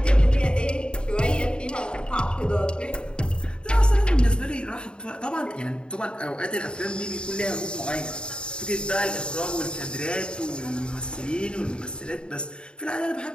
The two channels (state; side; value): late; right; 0.051 ms